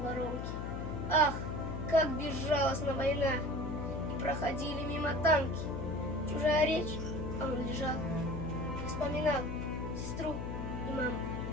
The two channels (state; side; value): noise; left; hum, 4 dB below the sound